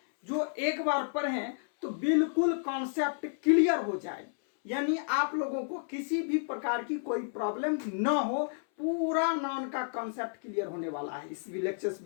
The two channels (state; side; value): silent; right; 57 dB below the other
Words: जो एक बार पढ़ें तो बिल्कुल कॉन्सेप्ट क्लियर हो जाए, यानी आप लोगों को किसी भी प्रकार की कोई प्रॉब्लम न हो। पूरा नाउन का कॉन्सेप्ट क्लियर होने वाला है इस लेक्चर्स